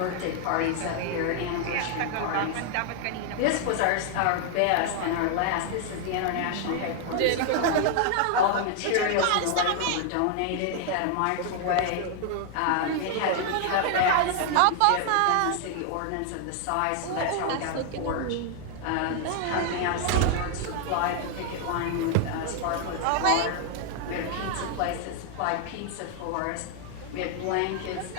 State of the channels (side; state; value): both; different; correlation 0.00